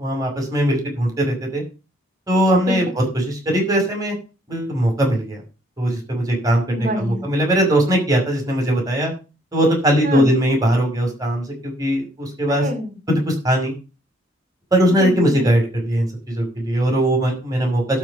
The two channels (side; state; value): both; normal; correlation 0.66